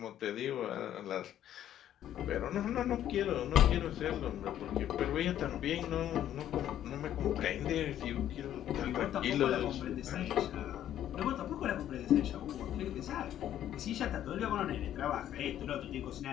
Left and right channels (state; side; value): quieter; right; 11.3 dB